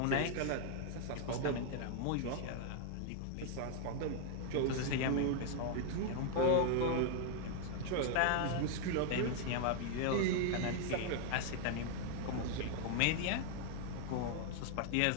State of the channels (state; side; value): different; both; correlation 0.00